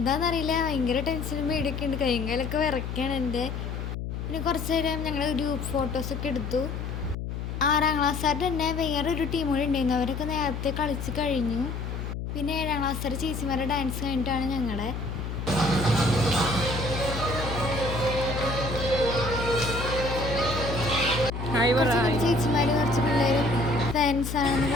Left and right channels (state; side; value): noise; left; hum, 5 dB below the sound